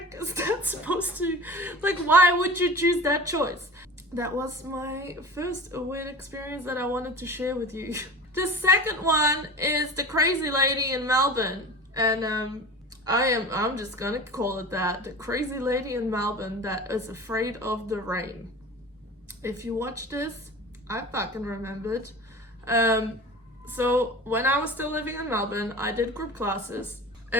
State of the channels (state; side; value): normal; both; correlation 0.35